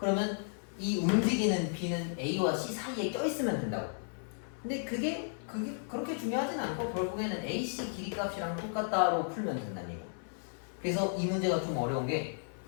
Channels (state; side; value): silent; right; 55 dB below the other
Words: 이 움직이는 B는 A와 C 사이에 껴있으면 된다고. 근데 그게 그렇게 중요하진 않고 결국에는 AC 길이값이랑 똑같다로 풀면 된다는 얘기야. 그래서 이 문제가 좀 어려운 게